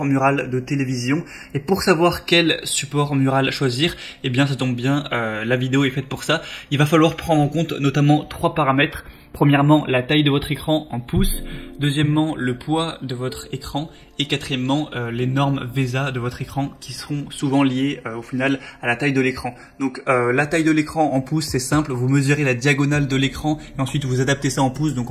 mural de télévision. Et pour savoir quel support mural choisir, eh bien ça tombe bien, la vidéo est faite pour ça. Il va falloir prendre en compte notamment 3 paramètres. Premièrement, la taille de votre écran en pouces. Deuxièmement, le poids de votre écran. Et quatrièmement, les normes VESA de votre écran qui seront souvent liées au final à la taille de l'écran. Donc la taille de l'écran en pouces, c'est simple. Vous mesurez la diagonale de l'écran et ensuite vous adaptez ça en pouces. Donc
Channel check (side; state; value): both; identical; correlation 1.00